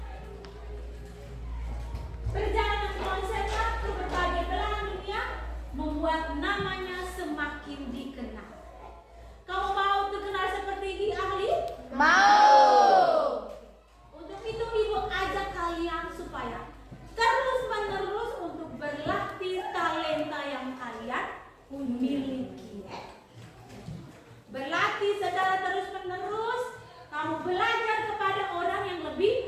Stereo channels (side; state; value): both; identical; correlation 1.00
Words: Perjalanan konsernya ke berbagai belahan dunia membuat namanya semakin dikenal. Kamu mau terkenal seperti Ki Ahli? Mau. Untuk itu Ibu ajak kalian supaya terus-menerus untuk berlatih talenta yang kalian miliki. Berlatih secara terus-menerus, kamu belajar kepada orang yang